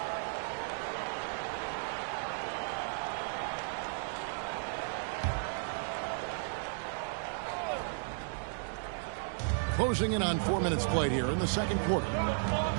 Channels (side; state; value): left; silent; digital silence